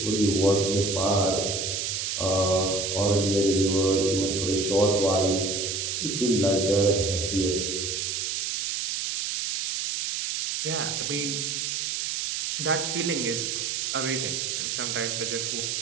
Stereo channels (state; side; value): noise; right; hiss, 2 dB below the sound